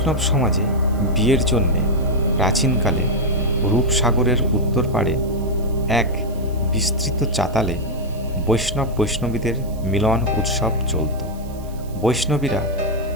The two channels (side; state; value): right; noise; hiss, 23 dB below the sound